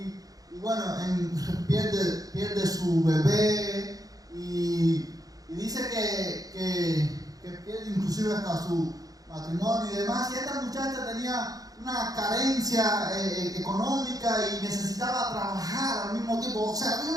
Y bueno, pierde su bebé y dice que pierde inclusive hasta su matrimonio y demás. Y esta muchacha tenía una carencia económica y necesitaba trabajar al mismo tiempo. O sea, había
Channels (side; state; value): left; late; 0.18 ms